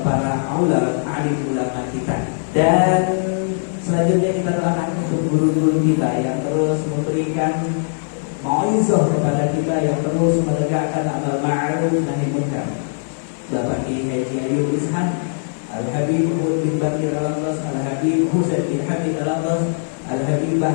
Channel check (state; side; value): silent; right; 59 dB below the other